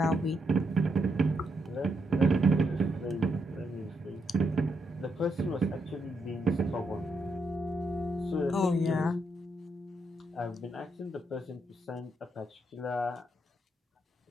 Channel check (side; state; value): both; normal; correlation 0.80